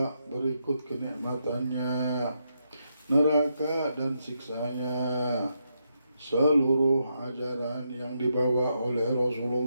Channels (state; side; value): inverted; both; correlation -0.82